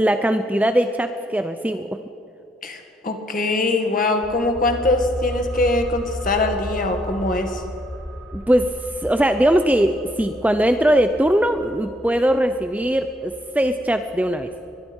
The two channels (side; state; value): both; normal; correlation 0.73